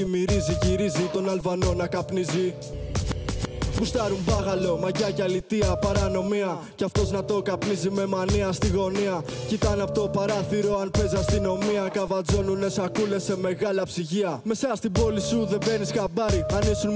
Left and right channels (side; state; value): both; identical; correlation 1.00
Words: μυρίζει. Γυρίζει τον Αλβανό να καπνίζει. Γουστάρουν μπάγαλο, μαγιά και αλητία, παρανομία. Κι αυτός να το καπνίζει με μανία στη γωνία. Κοιτάνε από το παράθυρο αν παίζει αστυνομία. Καβατζώνουνε σακούλες σε μεγάλα ψυγεία. Μέσα στην πόλη σου δεν μπαίνεις χαμπάρι. Αν ήσουν